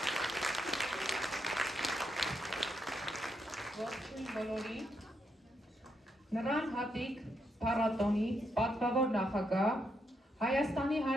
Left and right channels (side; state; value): both; normal; correlation 0.79